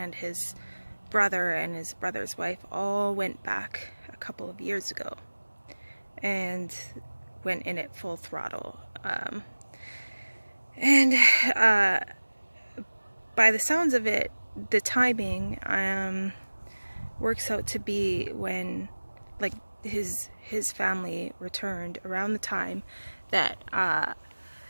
his brother and his brother's wife all went back a couple of years ago and went in it full throttle. And by the sounds of it, the timing works out to be when, like, his family returned around the time that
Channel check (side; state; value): both; inverted; correlation -1.00